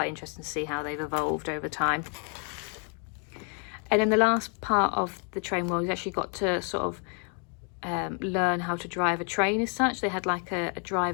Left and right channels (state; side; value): quieter; right; 39.9 dB